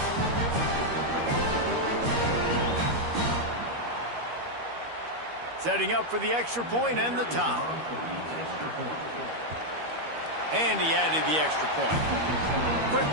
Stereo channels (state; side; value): late; left; 13 ms